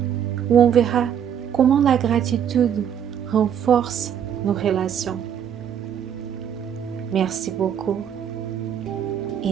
où on verra comment la gratitude renforce nos relations. Merci beaucoup et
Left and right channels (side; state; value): left; quieter; 8.8 dB